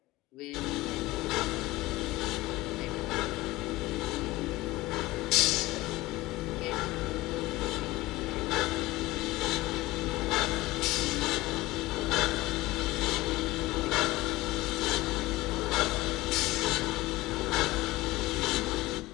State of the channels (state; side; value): quieter; right; 19.1 dB